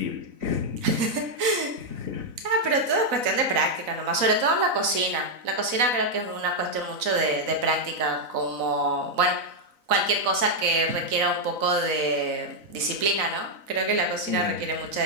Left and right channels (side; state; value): left; late; 4.0 ms